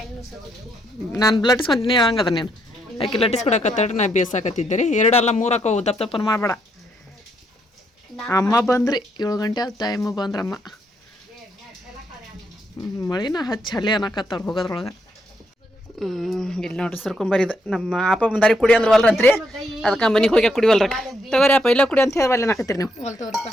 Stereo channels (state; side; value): normal; both; correlation 0.76